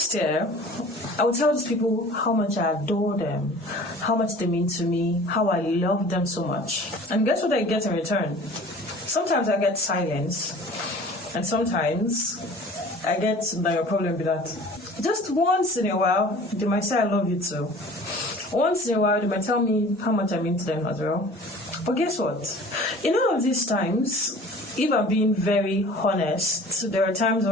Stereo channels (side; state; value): both; normal; correlation 0.45